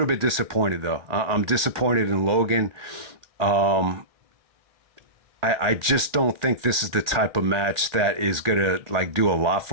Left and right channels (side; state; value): left; late; 1.7 ms